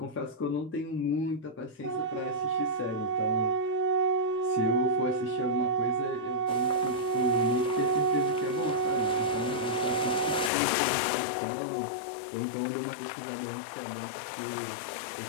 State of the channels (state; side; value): drops out; right; at 10.5 s